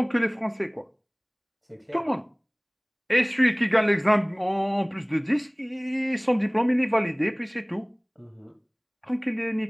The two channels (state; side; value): identical; both; correlation 1.00